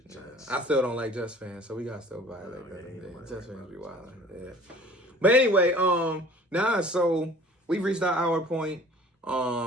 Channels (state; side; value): normal; both; correlation 0.47